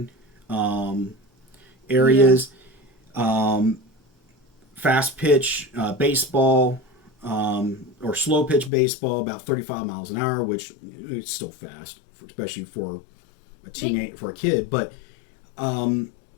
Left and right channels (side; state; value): right; drops out; at 8.7 s